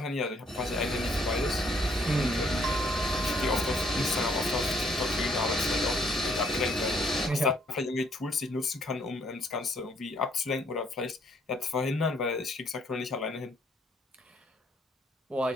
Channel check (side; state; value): both; normal; correlation 0.67